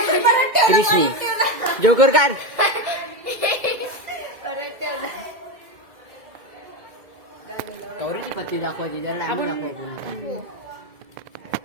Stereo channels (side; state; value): left; late; 2.2 ms